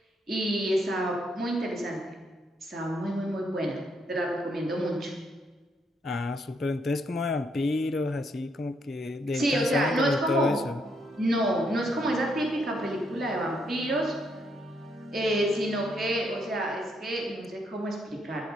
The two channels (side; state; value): both; normal; correlation 0.74